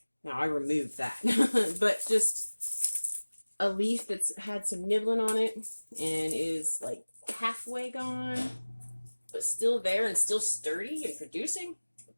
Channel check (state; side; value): inverted; both; correlation -1.00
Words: Now I removed that, but just a leaf that's had some nibbling on it and is like halfway gone, but still there and still sturdy and producing,